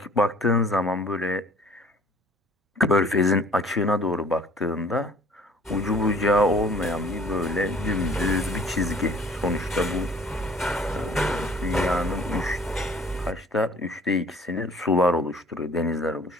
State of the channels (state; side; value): normal; both; correlation 0.52